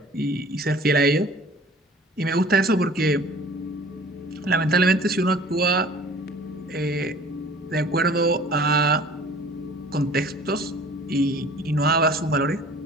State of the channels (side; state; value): both; normal; correlation 0.48